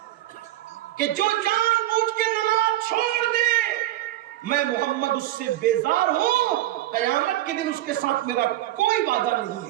کہ جو جان بوجھ کے نماز چھوڑ دے میں محمد اس سے بیزار ہوں، قیامت کے دن اس کے ساتھ میرا کوئی وعدہ نہیں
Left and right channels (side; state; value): left; quieter; 14.9 dB